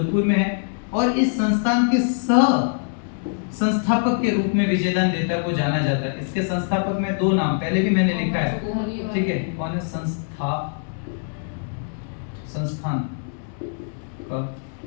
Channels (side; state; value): right; silent; 58 dB below the other